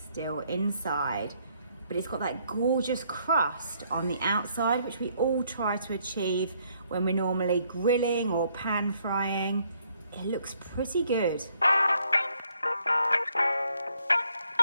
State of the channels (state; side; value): inverted; both; correlation -0.69